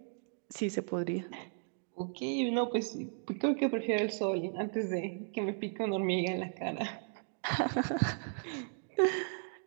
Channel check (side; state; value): left; silent; digital silence